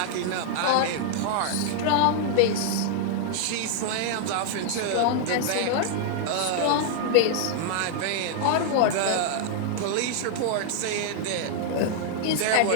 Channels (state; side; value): different; both; correlation -0.01